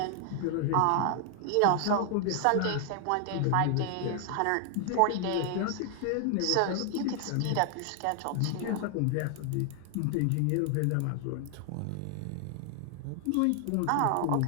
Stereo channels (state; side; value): different; both; correlation 0.00